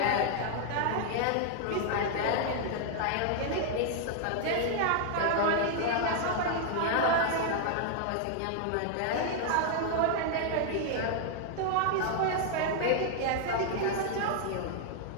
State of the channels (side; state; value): both; different; correlation 0.00